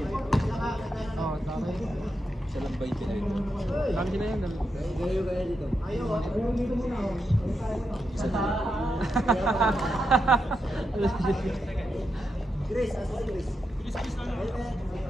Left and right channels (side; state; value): both; normal; correlation 0.85